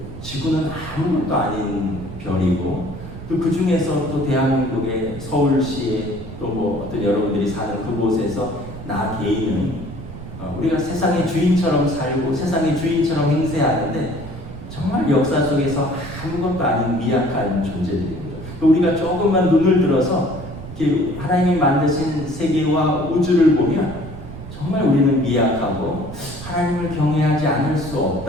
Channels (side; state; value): right; noise; rumble, 12 dB below the sound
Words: 지구는 아무것도 아닌 별이고, 또 그 중에서 또 대한민국의 서울시에 또 뭐 어떤 여러분들이 사는 그곳에서 나 개인은 우리가 세상의 주인처럼 살고 세상의 주인처럼 행세하는데 정말 역사 속에서 아무것도 아닌 미약한 존재들인 거죠. 우리가 조금만 눈을 들어서 이렇게 하나님이 만드신 세계와 우주를 보면 정말 우리는 미약하고 하나님을 경외하지 않을 수